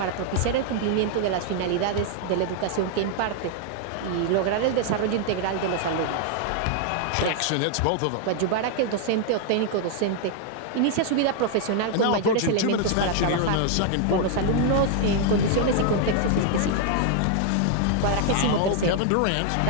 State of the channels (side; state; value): both; different; correlation 0.00